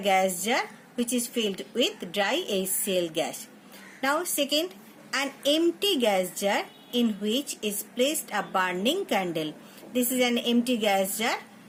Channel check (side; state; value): both; identical; correlation 1.00